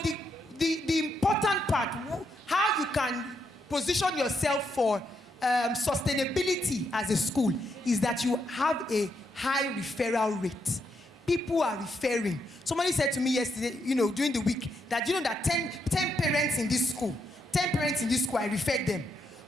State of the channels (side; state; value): both; normal; correlation 0.79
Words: the important part, how you can position yourself for sustainability as a school, is that you have a high referral rate. People are referring. Somebody said to me yesterday, during the week, that that 10 parents in this school, I referred them.